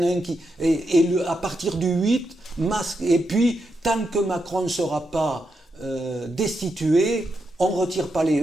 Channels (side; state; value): both; normal; correlation 0.84